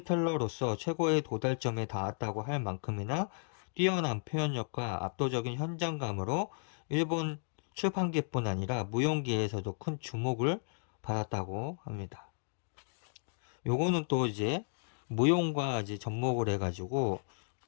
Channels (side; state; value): right; silent; digital silence